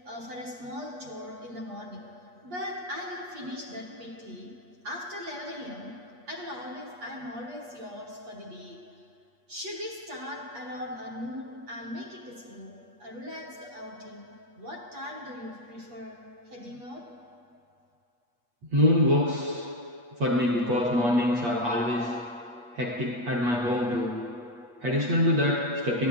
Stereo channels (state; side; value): late; left; 8.4 ms